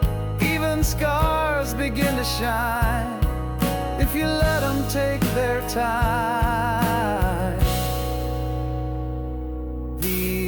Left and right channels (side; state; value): both; identical; correlation 1.00